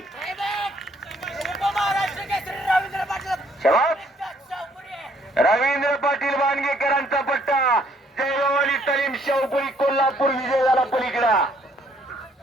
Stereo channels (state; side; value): normal; both; correlation 0.65